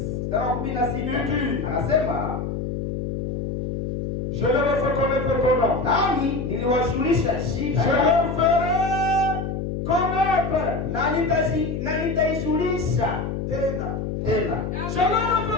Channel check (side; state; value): left; noise; hum, 3 dB below the sound